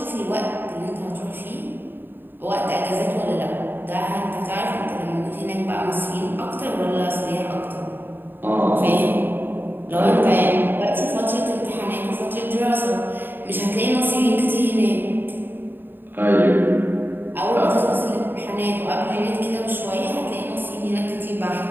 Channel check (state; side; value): late; left; 0.095 ms